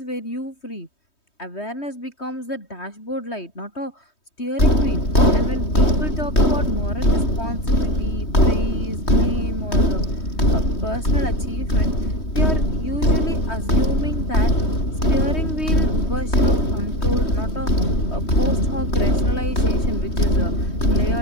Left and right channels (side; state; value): right; late; 3.2 ms